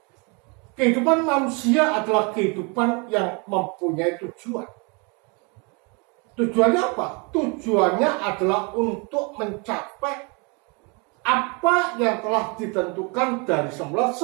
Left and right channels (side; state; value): left; quieter; 31.9 dB